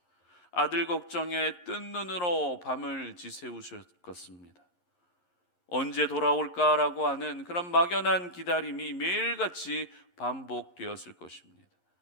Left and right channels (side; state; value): right; late; 11 ms